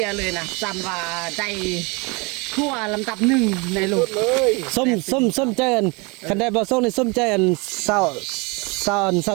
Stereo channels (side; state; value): left; quieter; 28.5 dB